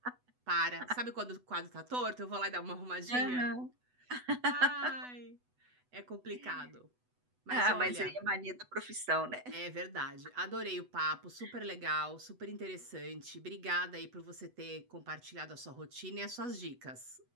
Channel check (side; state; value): left; late; 8.0 ms